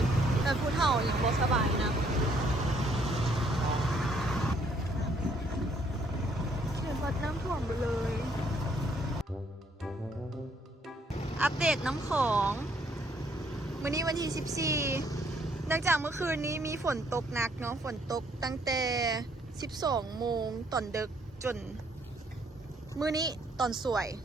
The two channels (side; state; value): both; normal; correlation 0.67